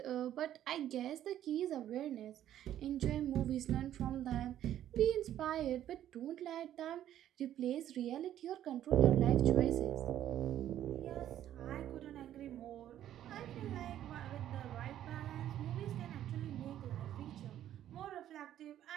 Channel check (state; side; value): quieter; left; 11.6 dB